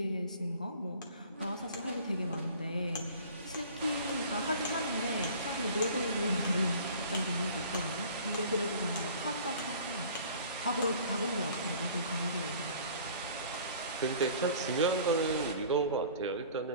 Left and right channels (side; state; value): both; inverted; correlation -0.47